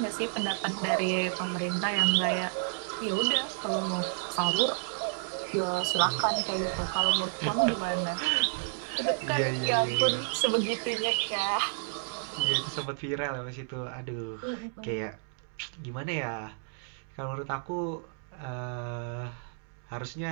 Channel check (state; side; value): silent; left; digital silence